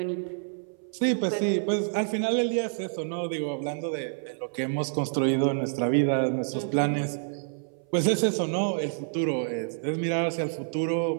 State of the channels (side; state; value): left; silent; 58 dB below the other